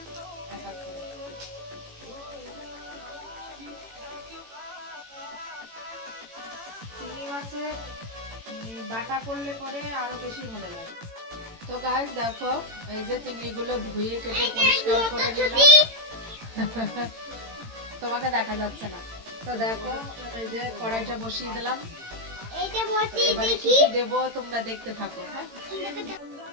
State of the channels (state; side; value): late; left; 18 ms